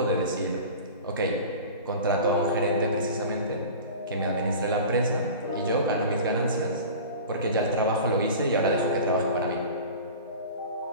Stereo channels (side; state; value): both; inverted; correlation -0.36